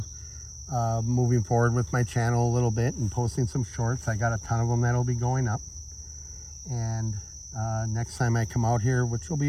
moving forward with my channel a little bit and posting some shorts. I got a ton of them that'll be going up. And next time I come out here, which will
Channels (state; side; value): identical; both; correlation 1.00